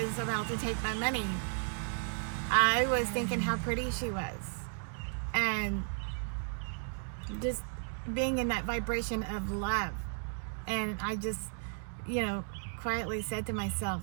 about to take my money, I was thinking how pretty she was. And just being in that vibration of love. And I just, quietly said to myself,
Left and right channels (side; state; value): left; silent; 55 dB below the other